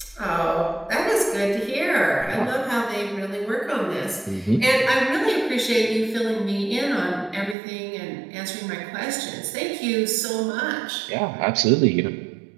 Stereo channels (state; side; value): drops out; left; at 7.6 s